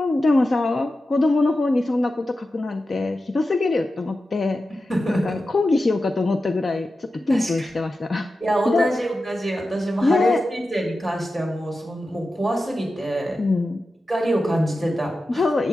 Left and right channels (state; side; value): normal; both; correlation 0.92